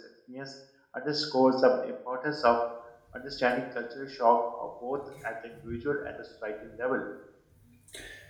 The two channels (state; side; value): identical; both; correlation 1.00